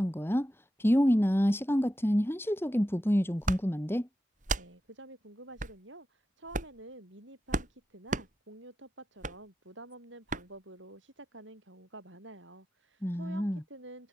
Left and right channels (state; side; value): normal; both; correlation 0.90